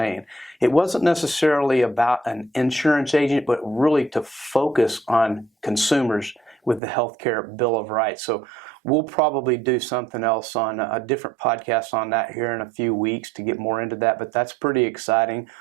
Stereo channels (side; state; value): left; drops out; at 6.8 s